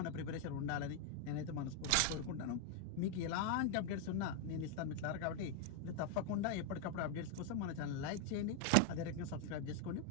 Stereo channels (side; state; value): both; different; correlation 0.01